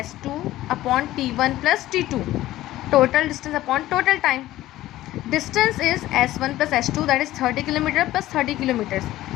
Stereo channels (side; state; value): right; quieter; 15.3 dB